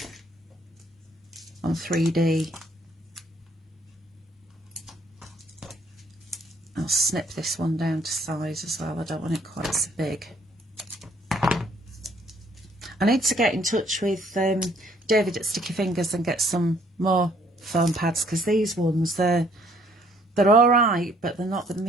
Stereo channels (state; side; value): normal; both; correlation 0.63